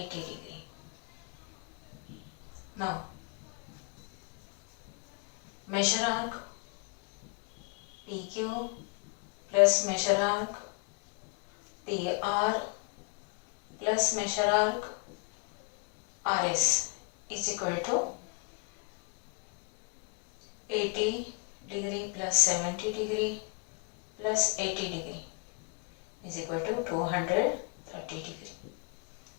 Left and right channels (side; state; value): right; quieter; 36.3 dB